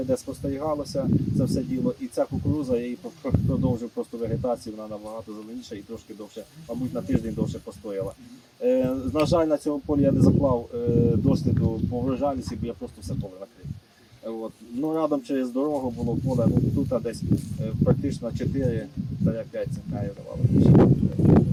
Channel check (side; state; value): both; identical; correlation 1.00